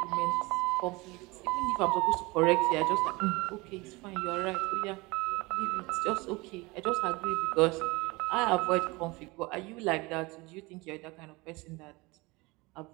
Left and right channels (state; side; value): quieter; left; 24.1 dB